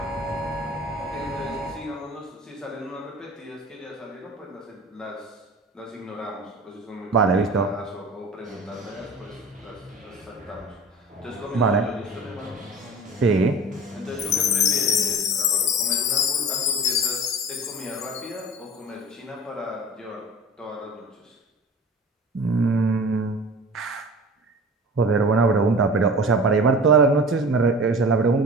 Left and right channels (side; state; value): both; normal; correlation 0.38